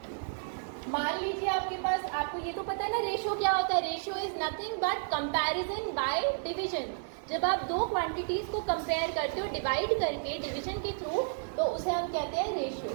मान लीजिए आपके पास, आपको ये तो पता है ना रेशियो क्या होता है। Ratio is nothing but comparison by division. जब आप दो क्वांटिटीज को कंपेयर करते हो डिवाइड करके डिवीजन के थ्रू, तो उसे हम कहते हैं रेशियो।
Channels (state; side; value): silent; left; digital silence